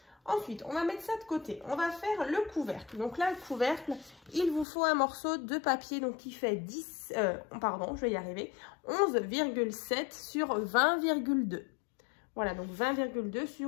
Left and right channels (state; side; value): drops out; right; at 4.7 s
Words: Ensuite, on va mettre ça de côté. On va faire le couvercle. Donc là, le couvercle, il vous faut un morceau de papier donc qui fait 11,7 sur 20,2. Voilà, donc 20,2